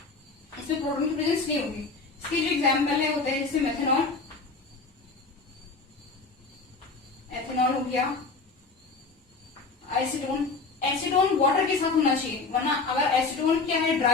इसमें प्रोटोन की प्रेजेंस नहीं होगी। इसकी जो एग्जाम्पल है होता है जैसे मेथनॉल, एथेनॉल हो गया, एसीटोन। एसीटोन वाटर के साथ होना चाहिए, वरना अगर एसीटोन क्या है,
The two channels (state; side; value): quieter; right; 4.0 dB